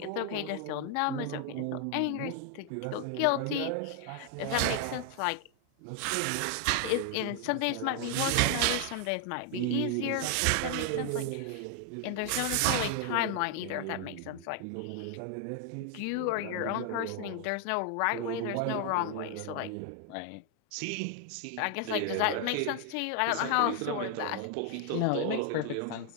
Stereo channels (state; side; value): different; both; correlation 0.00